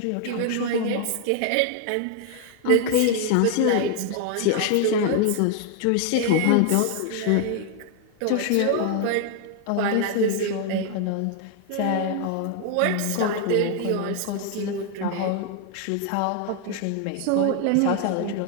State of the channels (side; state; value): both; different; correlation 0.00